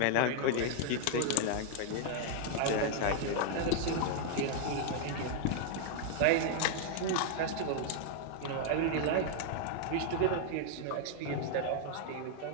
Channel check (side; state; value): both; different; correlation 0.00